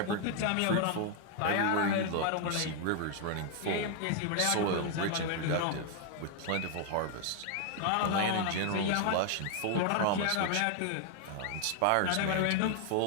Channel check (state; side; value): different; both; correlation 0.00